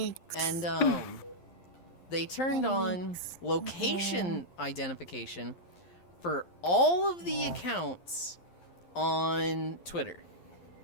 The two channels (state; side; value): late; right; 11 ms